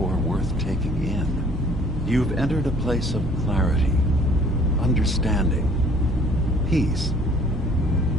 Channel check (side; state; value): both; normal; correlation 0.56